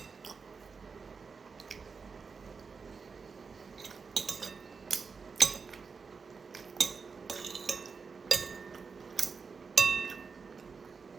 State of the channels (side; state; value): left; quieter; 5.1 dB